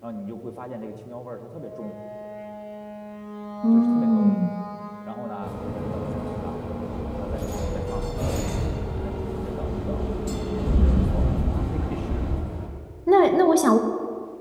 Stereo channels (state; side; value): identical; both; correlation 1.00